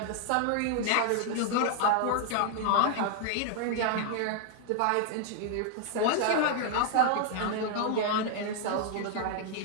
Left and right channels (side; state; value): both; different; correlation 0.00